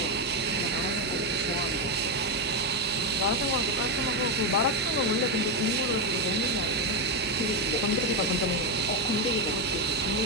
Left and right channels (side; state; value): left; noise; hum, 17 dB below the sound